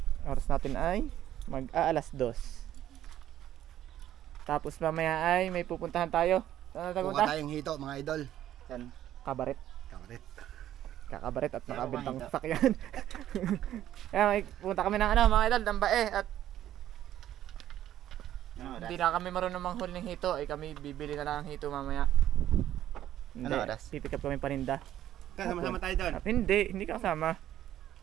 oras natin ay mag-aalas 2. Tapos mamaya ay may pupuntahan tayo. Saan natin pupunta? Pupunta tayong hito mga idol. Saan? Kabaret. Kakabaret at nakabintang sakyan. Kaya may pupunta kami ng mga idol, ng bae. At hindi na kami marunong manghul ng hito. Kami bibili na lang ng hito mamaya. Hindi, pipick up kami paninda. Kasama-sama tayo doon. Hindi ka kasama.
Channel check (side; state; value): left; quieter; 12.1 dB